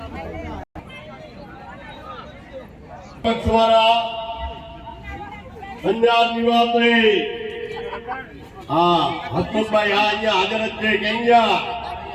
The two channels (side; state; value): both; identical; correlation 1.00